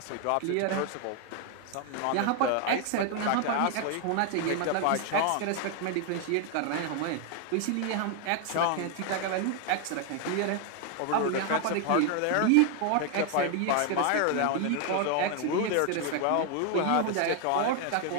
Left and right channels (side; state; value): both; different; correlation 0.01